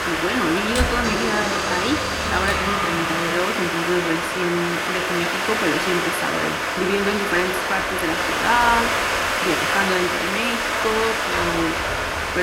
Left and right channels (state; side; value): identical; both; correlation 1.00